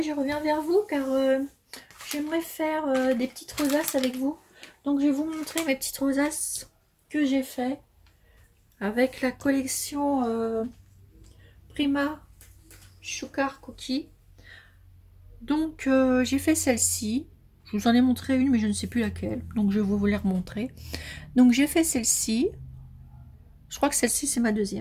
je reviens vers vous car j'aimerais faire des petites rosaces avec vous. Donc je vais vous montrer mes petites rosaces que j'ai fait avec la collection Prima Sugar Cookie. Donc j'ai fait celle-ci, je vous en ai montré une mais je ne sais plus laquelle, donc je vais vous les remontrer. Donc j'ai fait celle-ci, je crois que celle-ci c'est ma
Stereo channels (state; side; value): identical; both; correlation 1.00